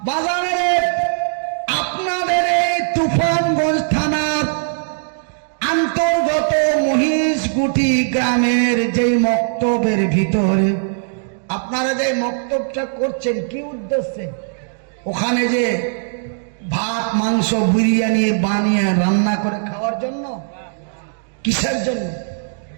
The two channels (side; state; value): left; silent; digital silence